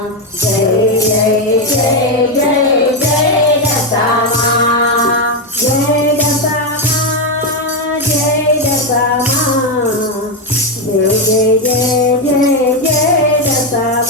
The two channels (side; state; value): both; normal; correlation 0.07